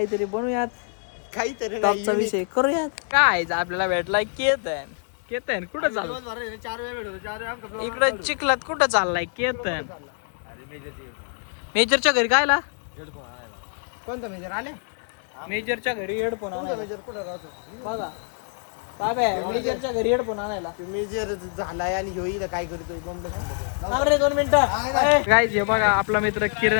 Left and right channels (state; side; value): silent; right; 58 dB below the other